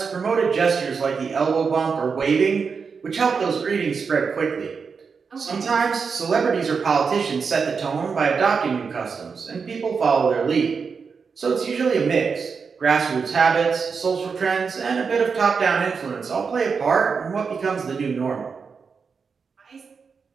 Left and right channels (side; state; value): left; quieter; 5.5 dB